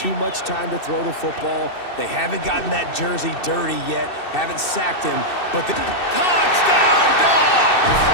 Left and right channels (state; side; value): late; right; 2.6 ms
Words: much time to throw the football. They haven't gotten that jersey dirty yet, haven't sacked him. But the touchdown, Dogs!